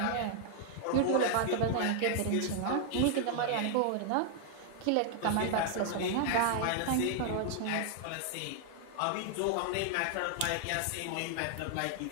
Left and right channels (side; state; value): both; different; correlation 0.00